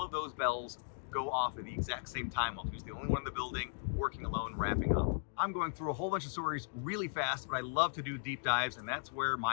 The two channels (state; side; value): silent; right; digital silence